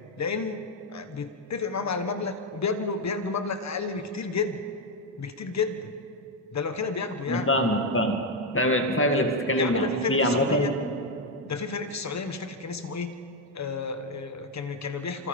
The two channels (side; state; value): both; normal; correlation 0.04